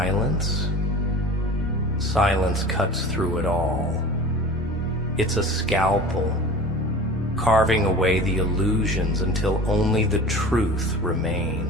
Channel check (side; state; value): both; normal; correlation 0.38